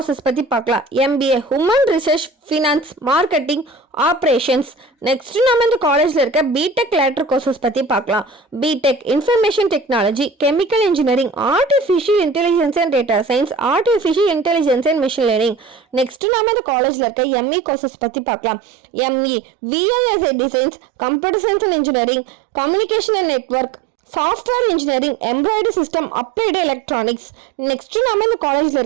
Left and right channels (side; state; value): left; drops out; at 16.2 s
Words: பத்தி பார்க்கலாம். MBA human research, finance, marketing, operations. Next நாம இந்த காலேஜ்ல இருக்க பிடெக் லேட்டர் கோர்சஸ் பத்தி பார்க்கலாம். BTech information technology, chemical engineering, artificial intelligence and data science, artificial intelligence and machine learning. Next நாம இந்த காலேஜ்ல இருக்க எம்இ கோர்சஸ் பத்தி பார்க்கலாம். ME VLSI designs, computer science and engineering, communication and network, software engineering, embroidery system, applied electronics. Next நாம இந்த காலேஜ்ல